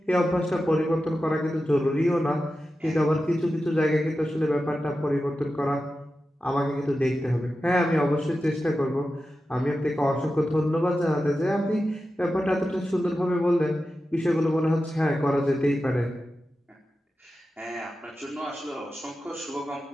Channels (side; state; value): both; normal; correlation 0.92